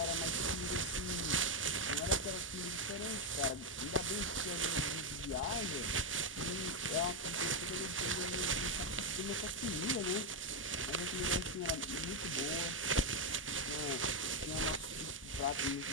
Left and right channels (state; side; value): normal; both; correlation 0.03